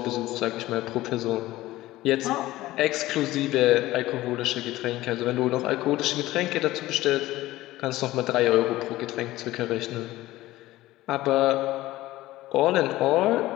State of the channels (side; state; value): right; quieter; 16.8 dB